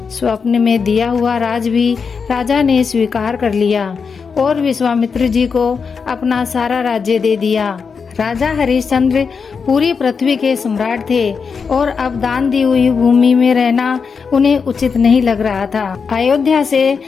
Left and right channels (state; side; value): quieter; right; 5.6 dB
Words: स्वप्न में दिया हुआ राज भी राजा ने स्वीकार कर लिया और विश्वामित्र जी को अपना सारा राज्य दे दिया। राजा हरिश्चंद्र पूरी पृथ्वी के सम्राट थे और अब दान दी हुई भूमि में रहना उन्हें उचित नहीं लग रहा था। अयोध्या से